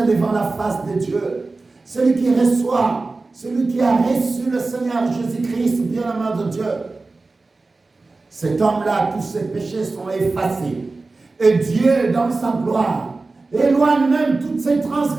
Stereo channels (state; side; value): quieter; left; 3.6 dB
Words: la face de Dieu. Celui qui reçoit, celui qui a reçu le Seigneur Jésus-Christ, bien-aimé de Dieu, cet homme-là, tous ses péchés sont effacés. Et Dieu, dans sa gloire, éloigne même toutes ses